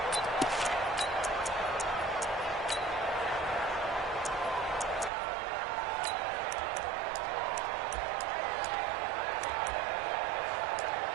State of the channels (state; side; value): drops out; left; at 5.1 s